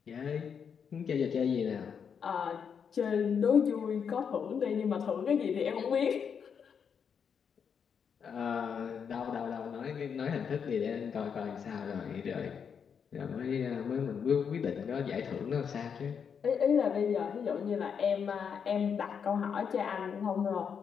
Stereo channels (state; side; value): quieter; right; 7.0 dB